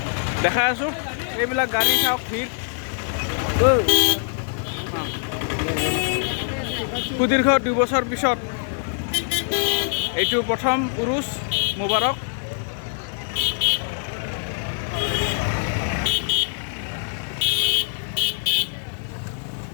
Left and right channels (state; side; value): silent; right; digital silence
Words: দেখাই আছোঁ এইবিলাক গাড়ী চাওক ভিৰ সুদীৰ্ঘ 2 বছৰ পিছত এইটো প্ৰথম উৰুচ মুবাৰক